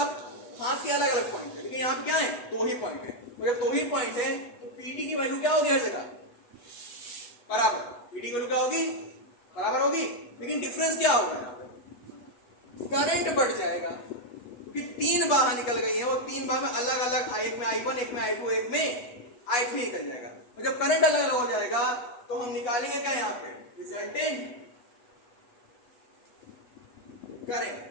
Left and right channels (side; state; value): right; late; 8.1 ms